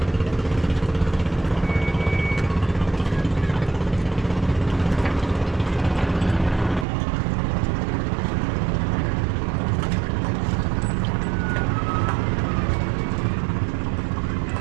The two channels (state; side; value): drops out; left; at 6.9 s